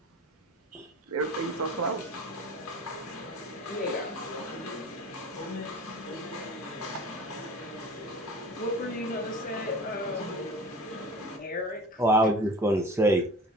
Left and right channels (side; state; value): both; normal; correlation 0.39